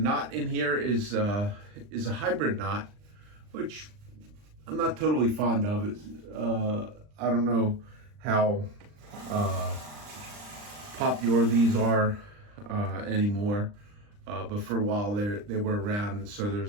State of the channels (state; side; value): late; left; 39 ms